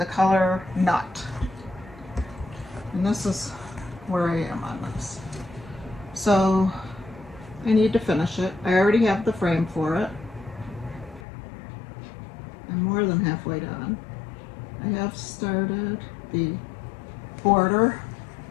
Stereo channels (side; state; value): right; drops out; at 11.2 s